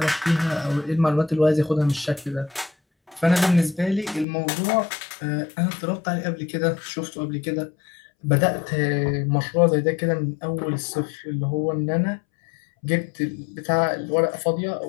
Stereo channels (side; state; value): right; drops out; at 4.2 s